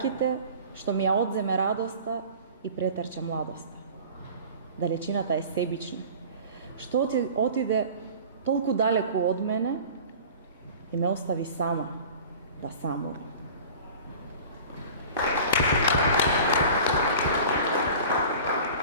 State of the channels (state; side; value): inverted; both; correlation -0.41